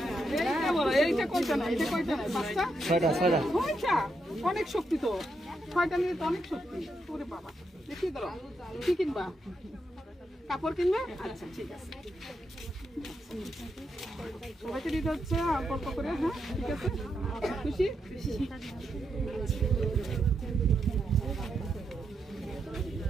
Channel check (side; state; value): both; normal; correlation 0.82